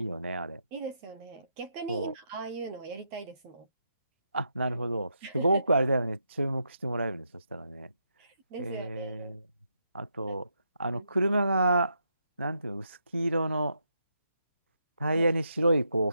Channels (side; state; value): both; inverted; correlation -0.81